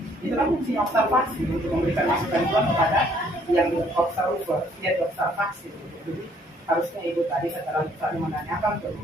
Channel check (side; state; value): both; normal; correlation 0.63